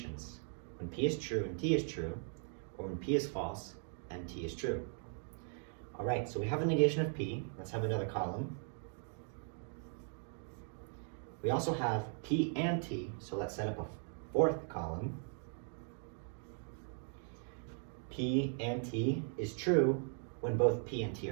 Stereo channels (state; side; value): silent; left; 52 dB below the other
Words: When P is true and T is true, or when P is false and T is true. All right, so we have a negation of P. Let's have another column. We also have P and T, so let's set up a 4th column. P and T is true when both P and T